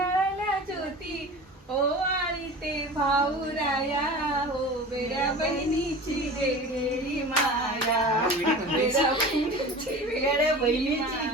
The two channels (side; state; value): both; normal; correlation 0.36